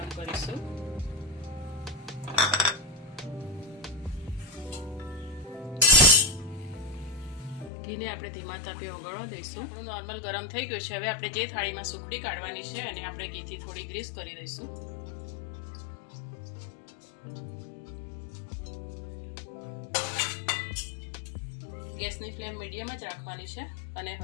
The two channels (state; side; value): drops out; right; at 7.7 s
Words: કરીશું। ઘીને આપણે ધીમા તાપે ઓગળવા દઈશું। નોર્મલ ગરમ થઈ ગયું છે। હવે આપણે જે થાળીમાં સુખડી કાઢવાની છે અને આપણે ઘીથી થોડી ગ્રીસ કરી દઈશું। ગેસની ફ્લેમ મીડિયમ જ રાખવાની છે અને